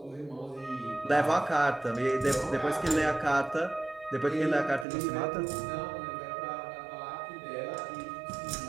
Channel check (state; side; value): drops out; left; at 4.9 s